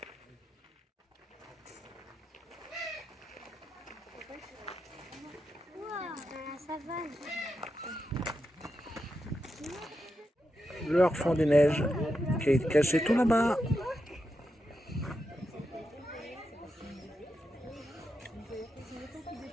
Leur fond des neiges qui est caché tout là-bas.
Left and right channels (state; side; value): normal; both; correlation 0.87